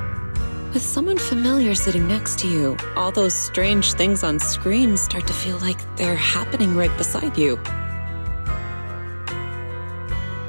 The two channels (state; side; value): inverted; both; correlation -1.00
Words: With someone familiar sitting next to you, all those strange things on screen start to feel like they're happening right beside you.